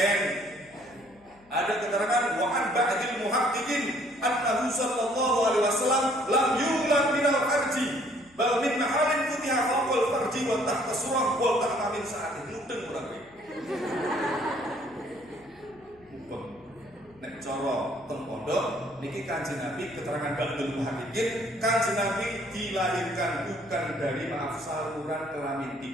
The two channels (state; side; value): noise; left; hum, 29 dB below the sound